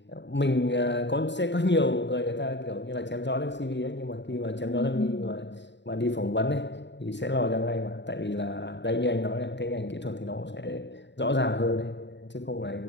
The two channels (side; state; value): right; late; 0.52 ms